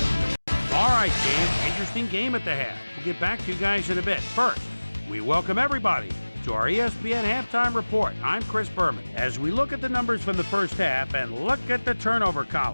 All right, game. Interesting game at the half. We'll get back to you guys in a bit. First, we welcome everybody to our ESPN halftime report. I'm Chris Berman. As we look at the numbers from the first half and look at the turnover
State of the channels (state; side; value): inverted; both; correlation -1.00